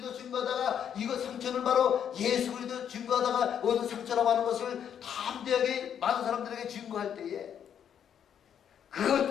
증거하다가 이거 상처는 바로 예수 그리스도 증거하다가 얻은 상처라고 하는 것을 담대하게 많은 사람들에게 증거할 때에 그것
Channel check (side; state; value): right; quieter; 8.8 dB